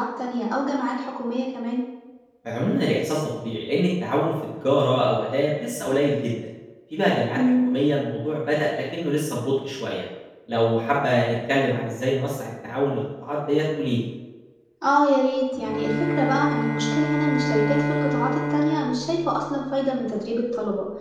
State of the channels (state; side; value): identical; both; correlation 1.00